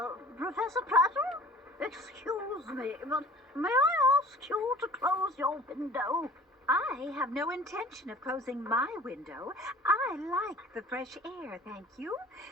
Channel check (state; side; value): normal; both; correlation 0.46